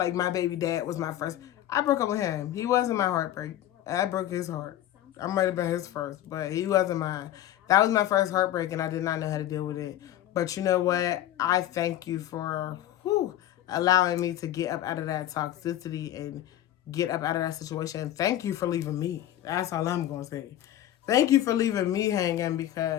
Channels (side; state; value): right; quieter; 12.7 dB